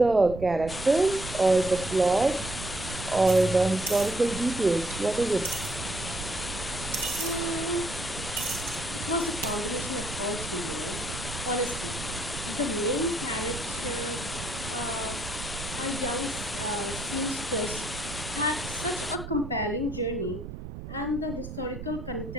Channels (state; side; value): noise; right; rumble, 10 dB below the sound